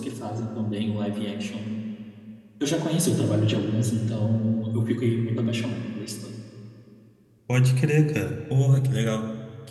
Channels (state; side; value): identical; both; correlation 1.00